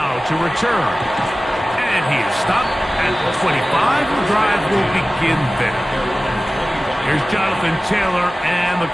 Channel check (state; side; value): normal; both; correlation 0.96